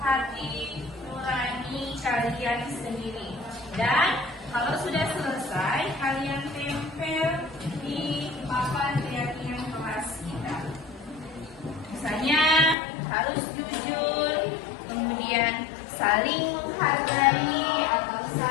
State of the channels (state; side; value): drops out; right; at 12.8 s